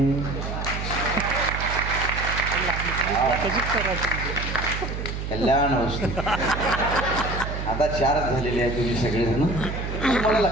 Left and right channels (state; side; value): noise; right; hum, 5 dB below the sound